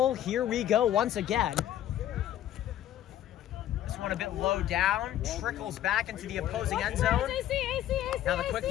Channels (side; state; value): right; quieter; 12.1 dB